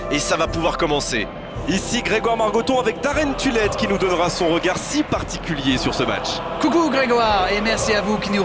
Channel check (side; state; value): both; identical; correlation 1.00